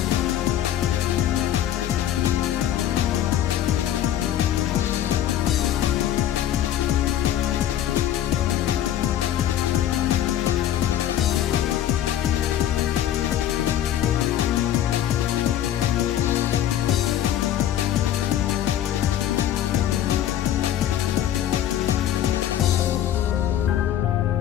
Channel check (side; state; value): right; quieter; 11.4 dB